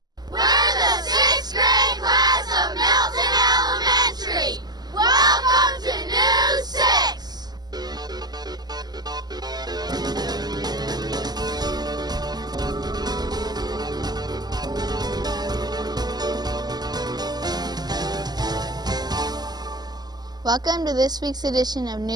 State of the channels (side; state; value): left; late; 0.20 ms